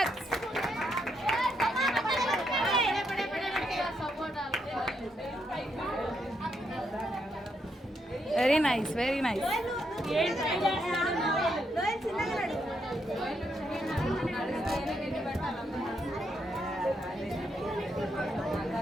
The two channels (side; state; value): both; normal; correlation 0.78